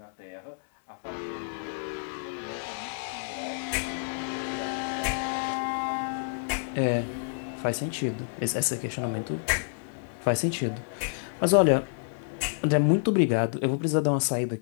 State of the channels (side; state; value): right; silent; digital silence